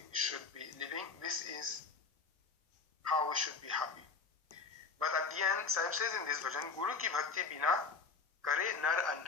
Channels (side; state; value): right; quieter; 4.7 dB